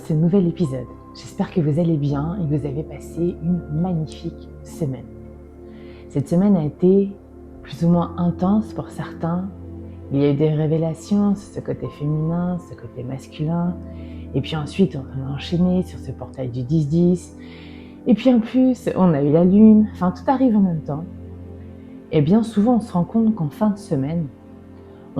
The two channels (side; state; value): both; identical; correlation 1.00